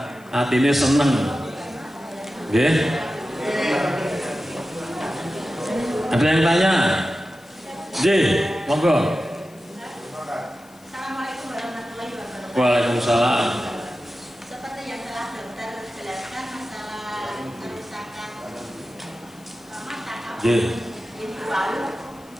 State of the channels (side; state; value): left; noise; hiss, 27 dB below the sound